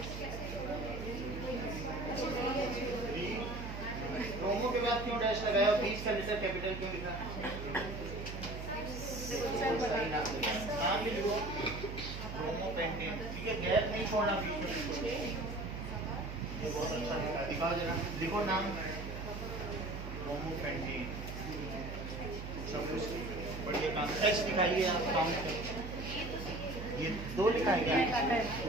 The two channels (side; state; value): right; noise; hum, 7 dB below the sound